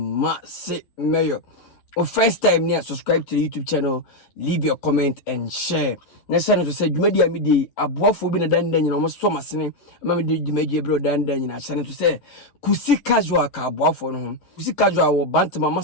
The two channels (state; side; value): late; right; 11 ms